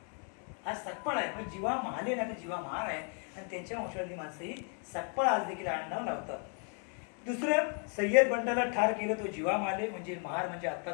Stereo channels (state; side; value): quieter; right; 39.7 dB